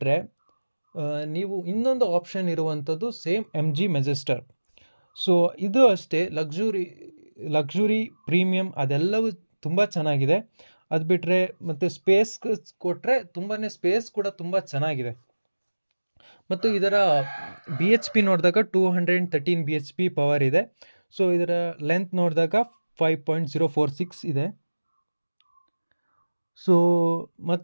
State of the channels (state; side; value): inverted; both; correlation -1.00